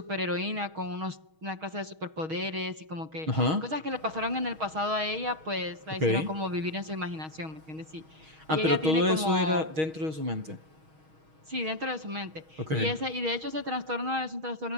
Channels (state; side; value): late; left; 6.3 ms